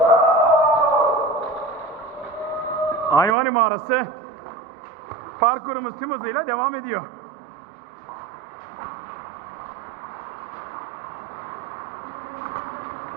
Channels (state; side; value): drops out; left; at 3.4 s